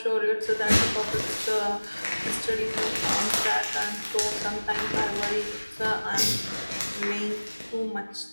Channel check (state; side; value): inverted; both; correlation -1.00